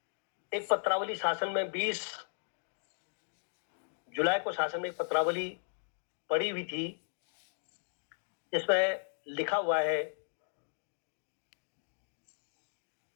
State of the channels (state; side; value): silent; right; digital silence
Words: एक पत्रावली शासन में 20 जुलाई को शासन में एक पत्रावली पड़ी हुई थी, जिसमें लिखा हुआ है